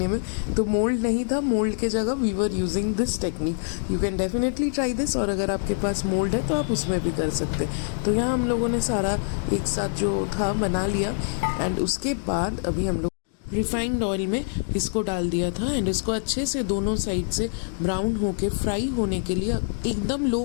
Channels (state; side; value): silent; right; digital silence